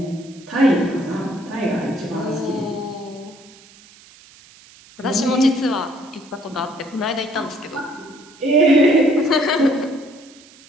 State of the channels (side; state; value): right; noise; hiss, 24 dB below the sound